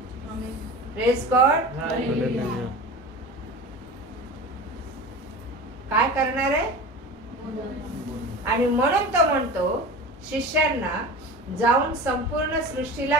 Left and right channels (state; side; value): normal; both; correlation 0.33